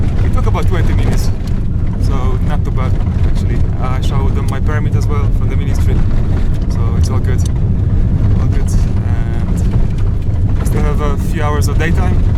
It took about 20 minutes, so not too bad actually. I showed them my permit as well from the ministry, so it's all good. All good. And I still have a few hours of daytime,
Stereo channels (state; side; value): identical; both; correlation 1.00